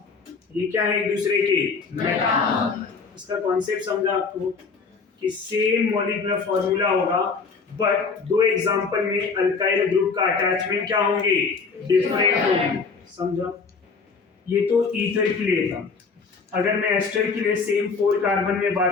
ये क्या है? एक दूसरे के मेटा। इसका कॉन्सेप्ट समझा आपको कि सेम मॉलिक्यूलर फॉर्मूला होगा बट दो एग्जांपल में अल्काइल ग्रुप का अटैचमेंट क्या होंगे? डिफरेंट होंगे। समझा? ये तो ईथर के लिए था। अगर मैं एस्टर के लिए सेम 4 कार्बन में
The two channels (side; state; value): right; quieter; 4.9 dB